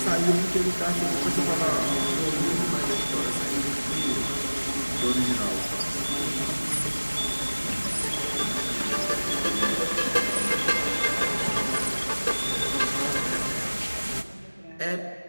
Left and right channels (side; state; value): both; inverted; correlation -1.00